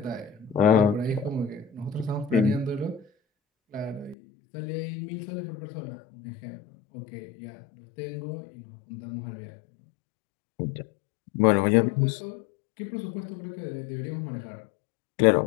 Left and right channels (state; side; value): drops out; right; at 4.2 s